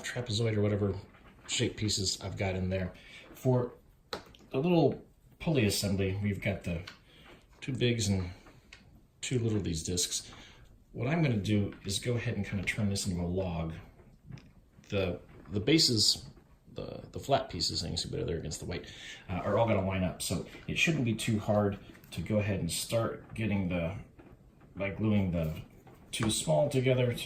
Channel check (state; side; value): identical; both; correlation 1.00